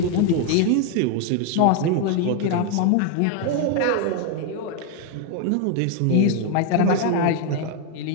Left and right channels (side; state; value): both; different; correlation 0.01